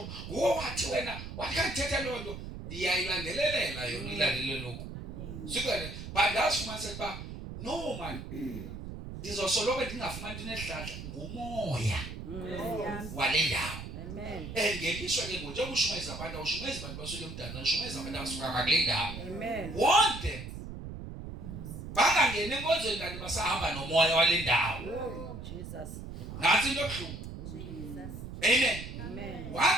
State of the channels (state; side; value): noise; right; rumble, 9 dB below the sound